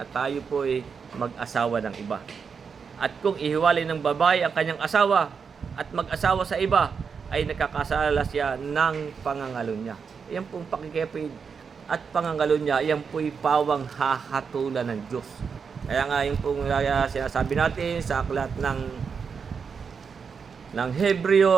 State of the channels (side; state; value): left; quieter; 6.0 dB